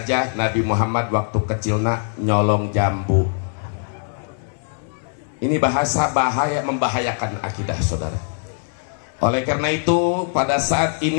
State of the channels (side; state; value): right; silent; 59 dB below the other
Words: Nabi Muhammad waktu kecilnya nyolong jambu. Ini bahasa bahaya, membahayakan akidah saudara. Oleh karena itu pada saat